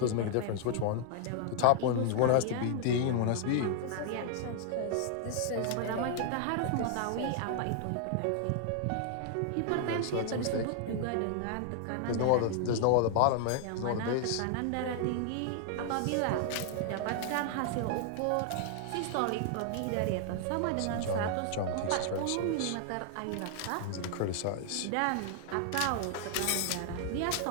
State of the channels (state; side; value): different; both; correlation 0.00